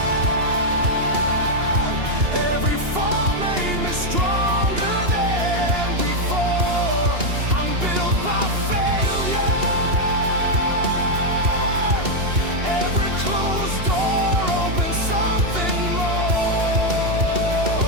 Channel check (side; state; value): left; late; 2.8 ms